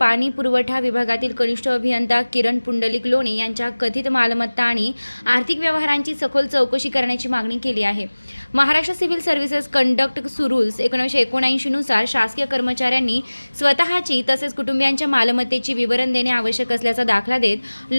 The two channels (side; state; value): both; inverted; correlation -1.00